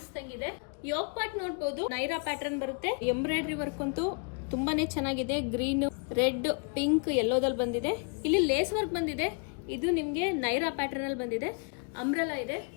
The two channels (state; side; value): quieter; right; 36.1 dB